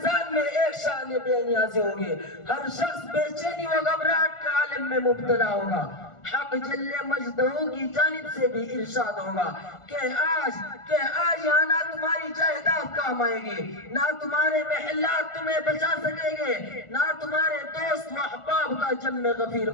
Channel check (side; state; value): right; late; 1.4 ms